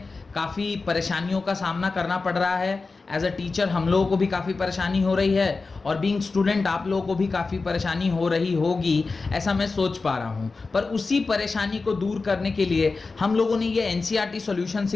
काफ़ी परेशानियों का सामना करना पड़ रहा है। एज अ टीचर हम लोगों को भी काफ़ी परेशानी हो रही है और बीइंग स्टूडेंट आप लोगों को भी काफ़ी परेशानी हो रही होगी, ऐसा मैं सोच पा रहा हूँ। पर उसी परेशानी को दूर करने के लिए हम लोगों ने ये एनसीईआरटी सॉल्यूशन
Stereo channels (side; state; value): right; quieter; 4.0 dB